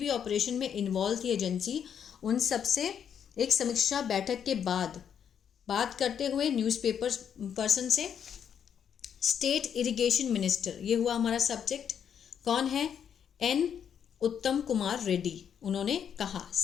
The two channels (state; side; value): quieter; right; 8.2 dB